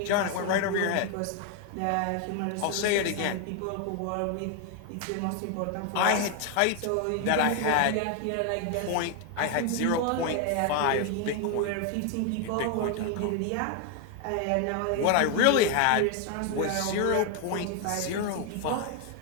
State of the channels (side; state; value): both; different; correlation 0.01